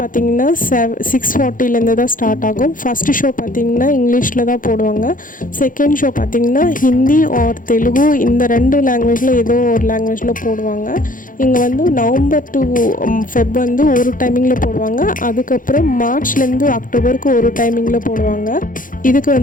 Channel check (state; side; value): late; right; 0.39 ms